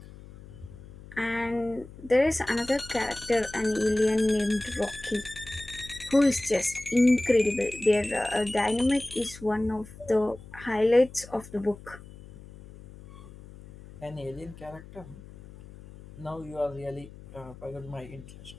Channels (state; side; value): noise; left; hum, 18 dB below the sound